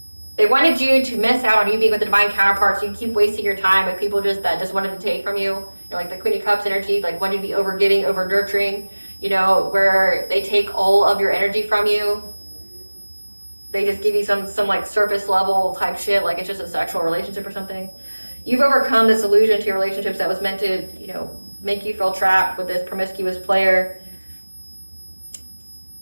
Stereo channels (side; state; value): both; inverted; correlation -1.00